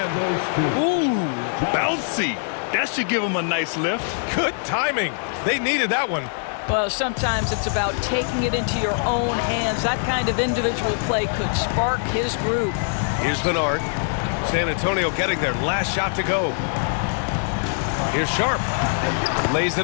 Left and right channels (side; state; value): right; silent; digital silence